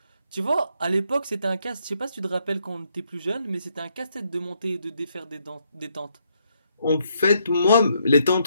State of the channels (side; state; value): both; inverted; correlation -0.75